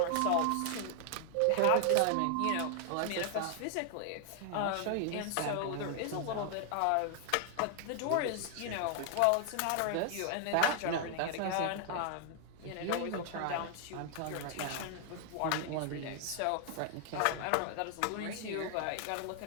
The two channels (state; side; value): different; both; correlation 0.00